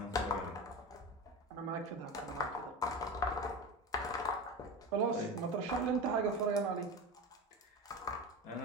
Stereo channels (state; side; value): normal; both; correlation 0.25